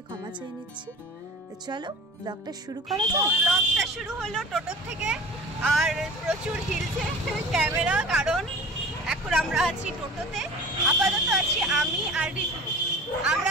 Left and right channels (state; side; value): normal; both; correlation 0.40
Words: ক্ষমা চেয়ে নিচ্ছি। চলো ব্লগটা শুরু করা যাক। ব্লগটা শুরু হলো টোটোর থেকে, আর প্রচুর হিলছে ক্যামেরা, কারণ এখন আমরা আছি টোটোতে। আপাতত আছি আমি আর ঋতু।